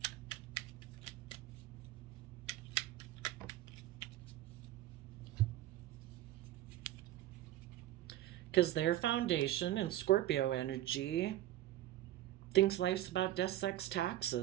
Because their foundation in Scorpio energy thinks life's about death, sex,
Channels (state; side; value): quieter; left; 14.1 dB